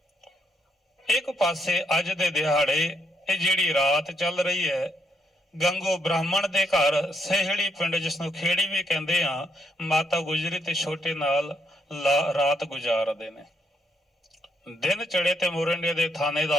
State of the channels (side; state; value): both; normal; correlation 0.76